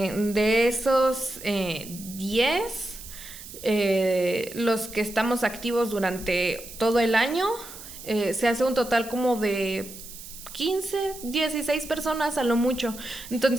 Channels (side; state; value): right; noise; hiss, 14 dB below the sound